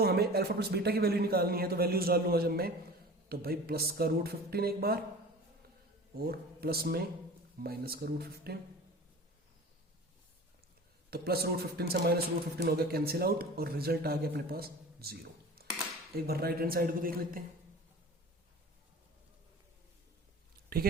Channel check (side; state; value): both; normal; correlation 0.38